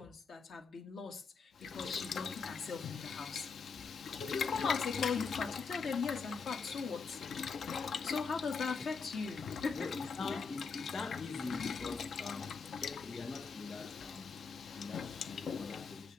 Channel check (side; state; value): right; quieter; 5.2 dB